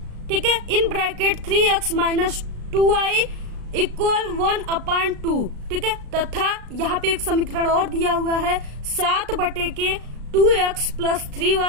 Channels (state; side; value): late; left; 36 ms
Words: ठीक है, in bracket 3x minus 2y equal 1/2। ठीक है, तथा यहाँ पे एक समीकरण और दिया हुआ है 7/2x plus